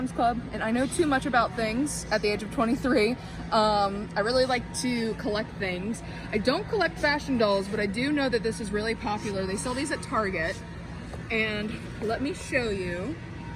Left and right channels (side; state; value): both; identical; correlation 1.00